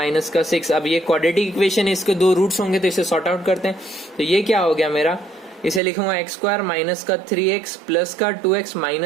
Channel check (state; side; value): drops out; left; at 5.8 s